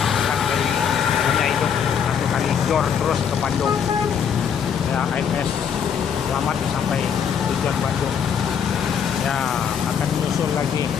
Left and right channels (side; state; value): right; quieter; 7.6 dB